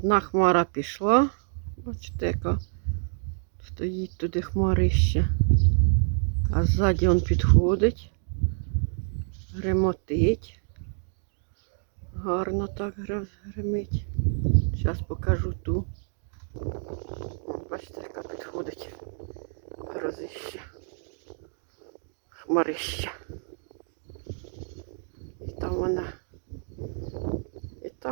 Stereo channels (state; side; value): silent; left; 59 dB below the other